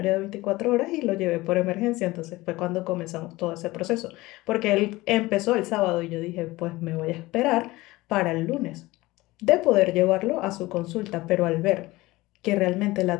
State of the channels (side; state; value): right; quieter; 19.7 dB